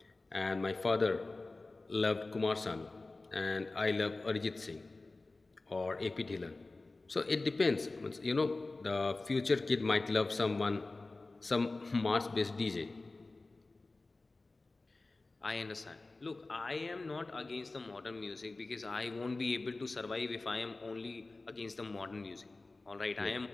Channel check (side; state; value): right; quieter; 3.3 dB